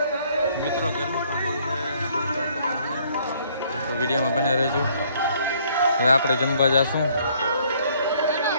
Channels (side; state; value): both; inverted; correlation -0.63